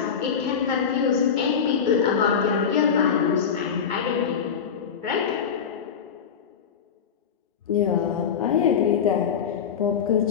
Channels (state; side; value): quieter; right; 7.2 dB